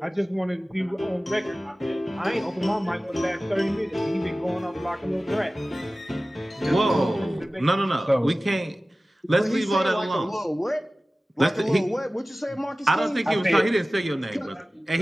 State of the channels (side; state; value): both; normal; correlation 0.97